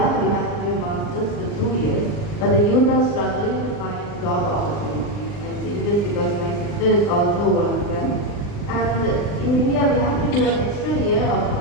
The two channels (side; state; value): right; late; 39 ms